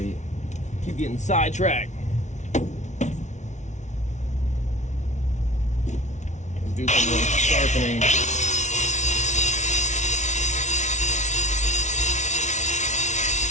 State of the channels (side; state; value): right; late; 0.34 ms